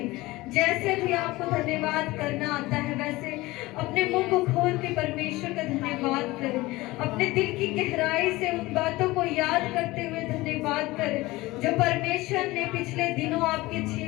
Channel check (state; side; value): quieter; right; 19.9 dB